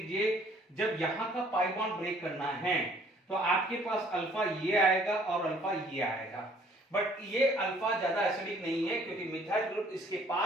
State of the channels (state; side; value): normal; both; correlation 0.58